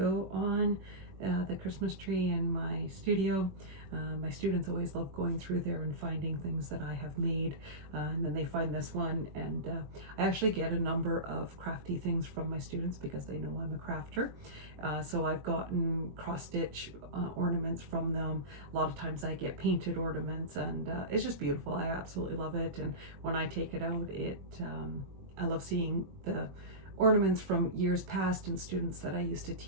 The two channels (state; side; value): late; left; 21 ms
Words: on the Christmas tree in my studio. My students always love going through there and finding things that I have made, and then they find this one, and I actually get a number of crafty things from my students because they know I'm a crafter. So I've gotten cross-stitch ornaments from them. A lot of times I get painted ornaments, and it's just beautiful. I absolutely love it, and when I take it out, I love seeing the ornaments from years past and students that I used to